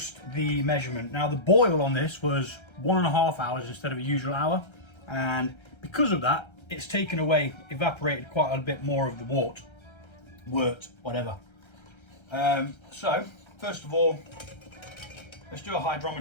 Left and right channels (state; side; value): late; right; 1.3 ms